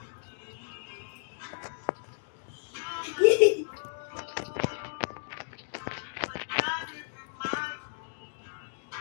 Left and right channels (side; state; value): right; silent; digital silence